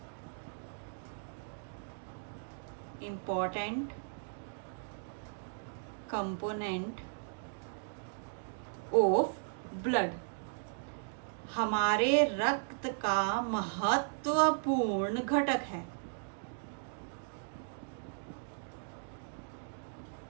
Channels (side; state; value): left; silent; digital silence